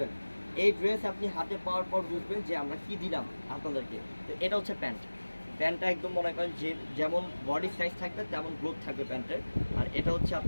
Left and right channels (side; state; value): both; inverted; correlation -1.00